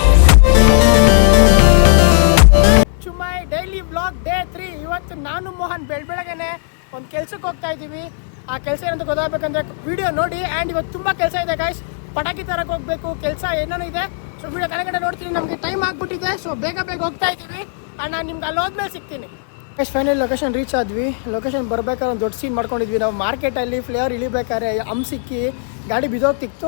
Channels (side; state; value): right; silent; 68 dB below the other